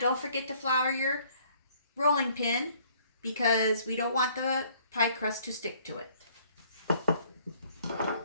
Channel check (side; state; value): both; inverted; correlation -0.61